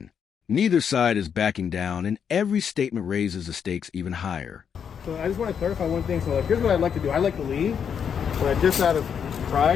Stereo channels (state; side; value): quieter; right; 7.5 dB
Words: Neither side is backing down, and every statement raises the stakes even higher. So I just want to clarify one thing. So here's what I'd like to do. I'd like to leave, but just out of